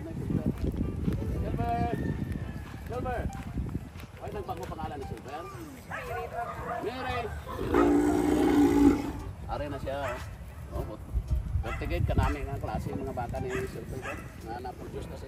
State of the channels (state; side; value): identical; both; correlation 1.00